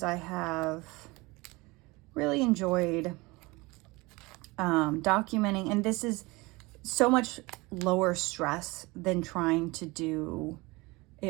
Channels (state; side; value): quieter; left; 23.5 dB